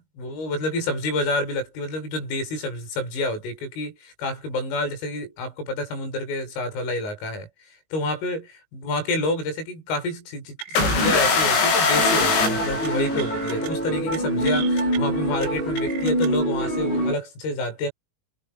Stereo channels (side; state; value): right; late; 19 ms